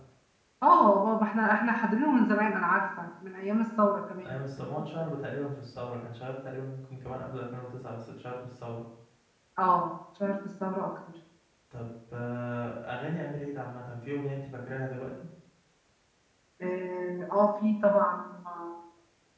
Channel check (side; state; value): both; identical; correlation 1.00